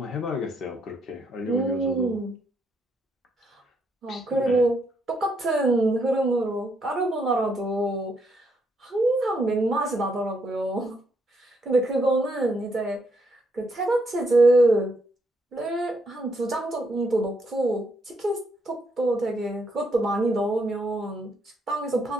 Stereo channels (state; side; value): normal; both; correlation 0.75